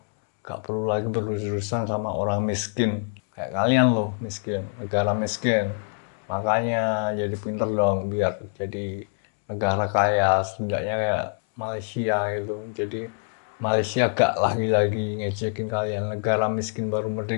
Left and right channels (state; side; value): silent; right; 61 dB below the other